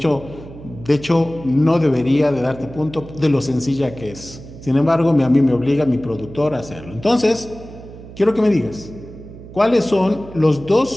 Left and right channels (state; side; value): noise; right; hum, 16 dB below the sound